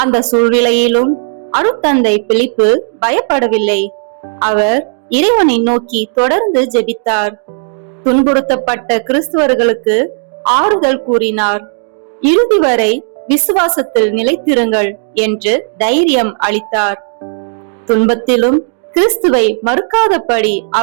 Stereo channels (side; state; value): left; silent; digital silence